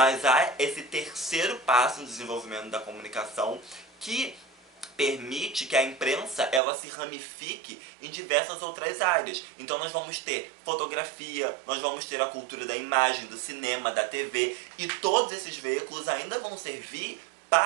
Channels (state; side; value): drops out; left; at 6.6 s